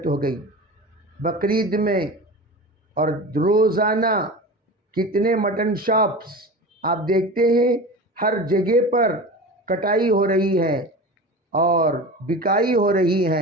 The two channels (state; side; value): normal; both; correlation 0.31